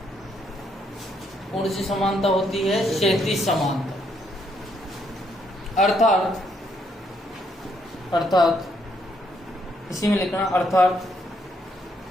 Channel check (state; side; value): normal; both; correlation 0.73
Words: कौन सी समानता होती है? क्षैतिज समानता। अर्थात इसी में लिखना, अर्थात